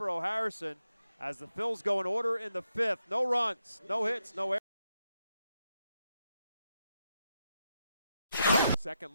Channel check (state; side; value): inverted; both; correlation -0.83